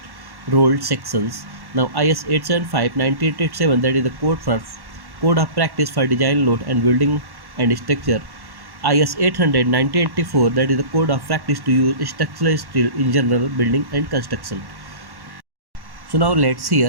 rolled sections. Now IS 875-9887 that is the code of practice for design load and building and structure. IS 800 1984 that is the code of practice to use structural steel in general building and construction. So now let's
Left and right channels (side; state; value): left; late; 1.1 ms